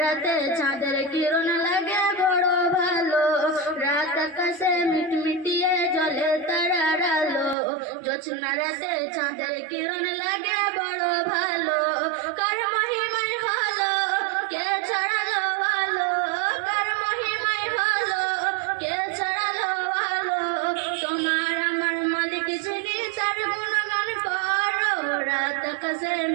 রাতে চাঁদের কিরণ লাগে বড় ভালো। রাত আকাশে মিটমিটিয়ে জ্বলে তারার আলো, জোছনা রাতে চাঁদের কিরণ লাগে বড় ভালো। কার মহিমায় হলো কে ছড়ালো আলো, কার মহিমায় হলো কে ছড়ালো আলো। তোমার আমার মালিক যিনি তার গুণগান করো। রাত আকাশে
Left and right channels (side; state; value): left; drops out; at 7.6 s